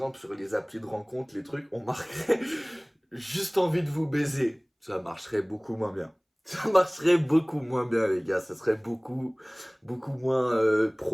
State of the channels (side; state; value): both; identical; correlation 1.00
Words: sur les applis de rencontre, les trucs, on marquerait juste envie de vous baiser. Ça marcherait beaucoup moins bien. Ça marcherait beaucoup moins bien, les gars. Ça serait beaucoup moins